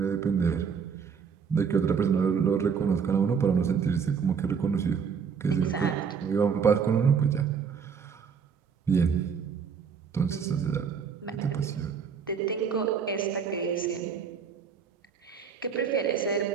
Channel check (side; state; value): left; quieter; 6.5 dB